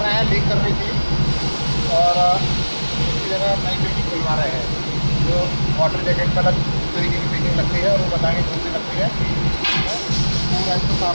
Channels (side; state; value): both; inverted; correlation -1.00